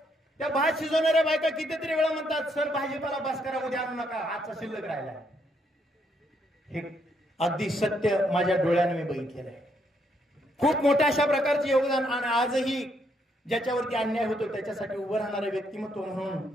त्या भात शिजवणाऱ्या बायका कितीतरी वेळा म्हणतात, सर भाजीपाला बस करा, उद्या आणू नका, आजचा शिल्लक राहिला. हे अगदी सत्य माझ्या डोळ्याने मी बघितलेलं आहे. खूप मोठ्या अशा प्रकारचे योगदान. आणि आजही ज्याच्यावरती अन्याय होतो त्याच्यासाठी उभं राहणारे व्यक्तिमत्व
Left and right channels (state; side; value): normal; both; correlation 0.74